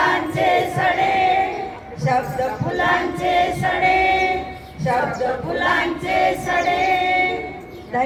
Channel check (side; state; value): both; identical; correlation 1.00